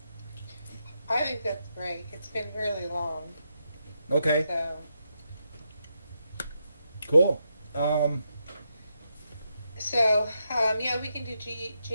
I think that's great. It's been really long. Okay. So. Cool. Yeah, we can do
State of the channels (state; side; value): inverted; both; correlation -0.83